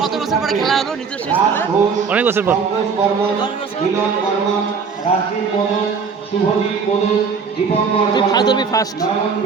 কত বছর পরে খেলা হলো নিজস্ব স্কুলে? অনেক বছর পর। 10 বছর। তুই ফার্স্ট ধরবি, ফার্স্ট।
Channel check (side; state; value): left; quieter; 5.6 dB